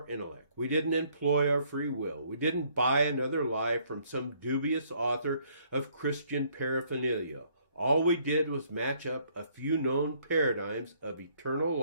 intellect. We didn't employ our free will. We didn't buy another lie from some dubious author of Christian paraphernalia. All we did was match up a few known paradigms of eternal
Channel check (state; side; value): inverted; both; correlation -0.65